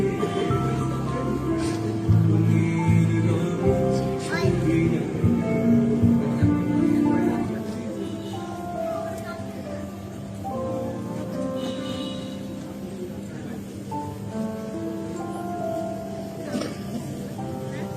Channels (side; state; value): both; identical; correlation 1.00